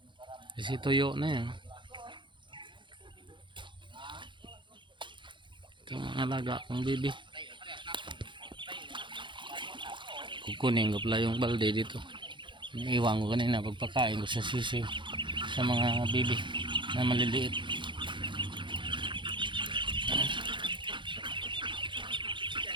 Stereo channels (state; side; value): late; left; 0.23 ms